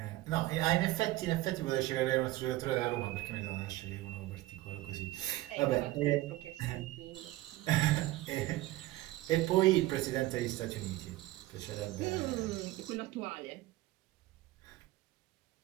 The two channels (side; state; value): left; quieter; 17.5 dB